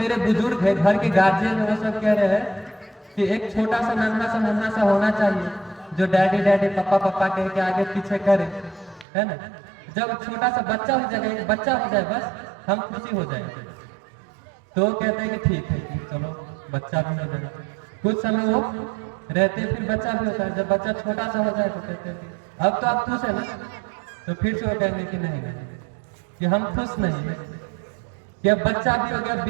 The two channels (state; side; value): drops out; left; at 9.1 s